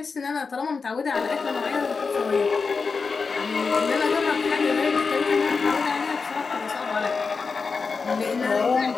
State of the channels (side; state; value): right; quieter; 4.8 dB